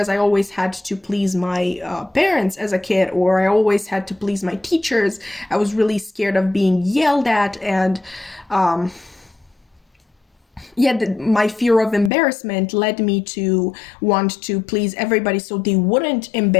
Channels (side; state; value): right; drops out; at 12.1 s